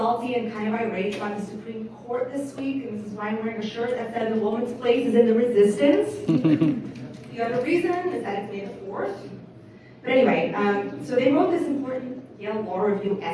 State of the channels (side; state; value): both; identical; correlation 1.00